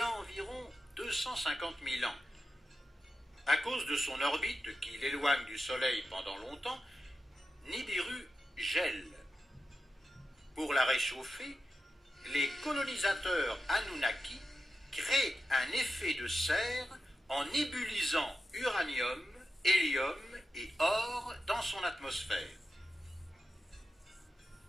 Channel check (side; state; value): both; normal; correlation 0.90